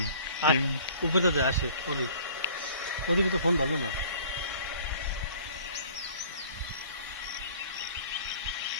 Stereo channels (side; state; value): both; inverted; correlation -0.50